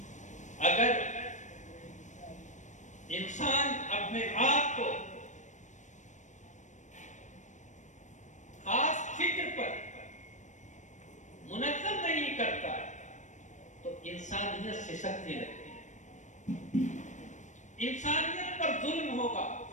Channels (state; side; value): late; right; 0.35 ms